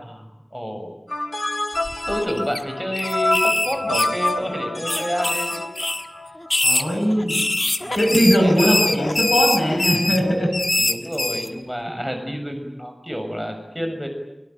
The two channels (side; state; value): both; normal; correlation 0.97